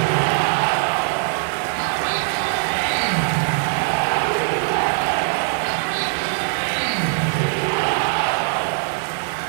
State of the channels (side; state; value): left; silent; 65 dB below the other